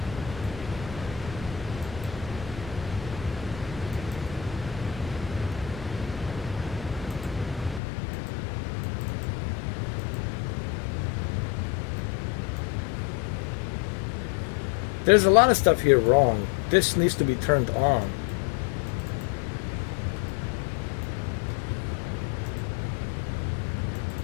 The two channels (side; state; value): right; drops out; at 7.8 s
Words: There's a lot of stuff here wrong. This needs to be turned on.